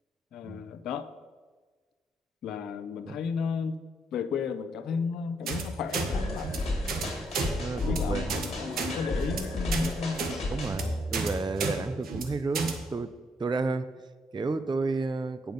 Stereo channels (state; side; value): normal; both; correlation 0.74